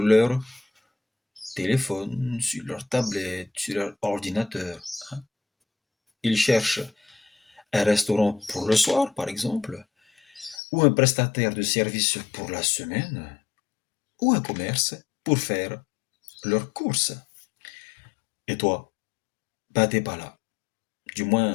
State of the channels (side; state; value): right; drops out; at 10.6 s